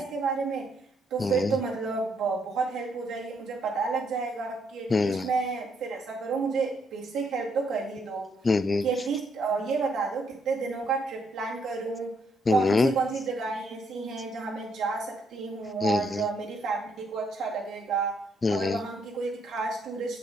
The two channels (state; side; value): normal; both; correlation 0.73